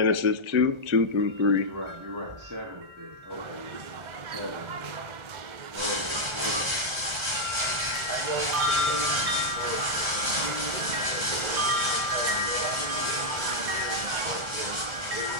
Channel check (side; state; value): left; late; 1.4 ms